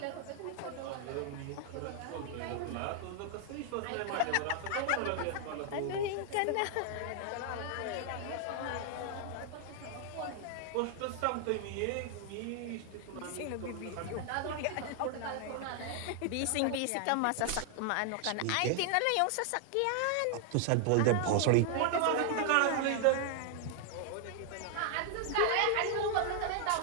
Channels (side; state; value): both; different; correlation 0.00